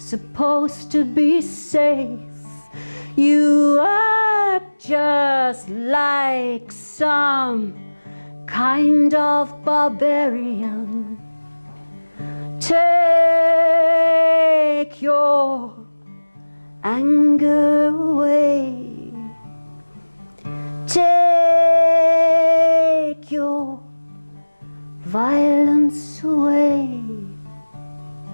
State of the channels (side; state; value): both; inverted; correlation -1.00